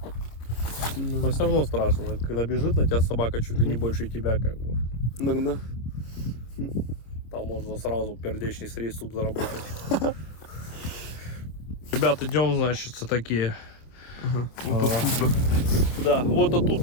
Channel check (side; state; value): right; late; 26 ms